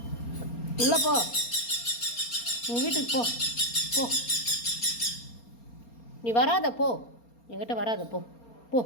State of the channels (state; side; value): late; right; 4.3 ms